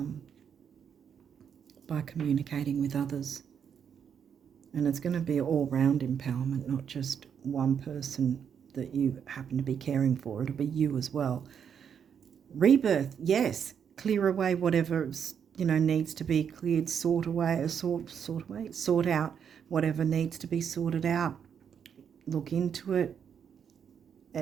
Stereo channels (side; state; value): left; quieter; 7.7 dB